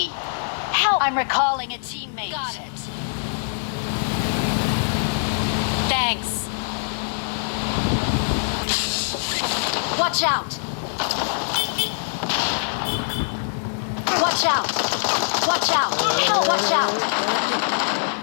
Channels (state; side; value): silent; right; digital silence